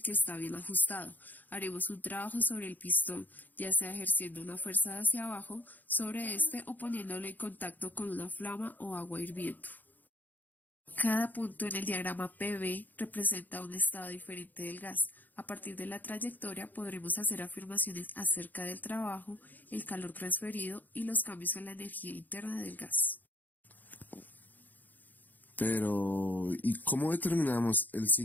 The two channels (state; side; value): late; right; 0.085 ms